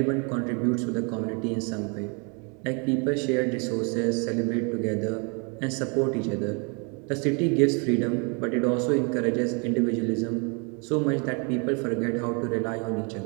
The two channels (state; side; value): quieter; left; 34.6 dB